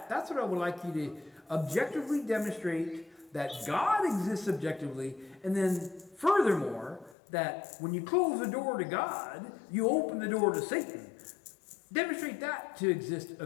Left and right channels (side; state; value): right; drops out; at 7.2 s